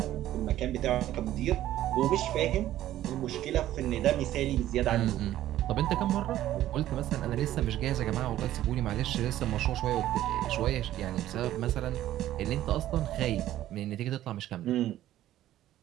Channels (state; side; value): quieter; left; 13.4 dB